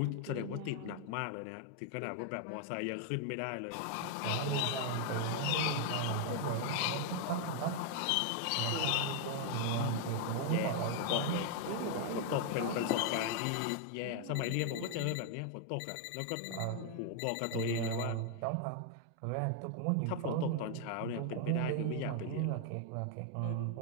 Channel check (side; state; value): both; different; correlation 0.00